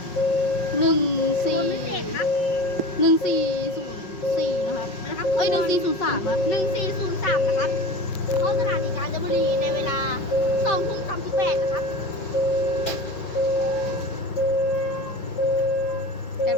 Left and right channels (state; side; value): late; right; 5.5 ms